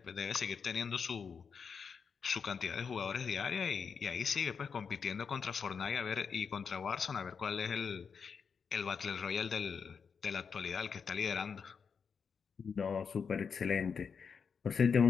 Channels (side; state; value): right; quieter; 6.1 dB